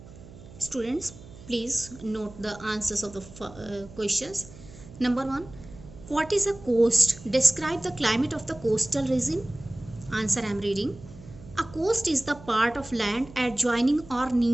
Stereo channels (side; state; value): right; noise; hum, 18 dB below the sound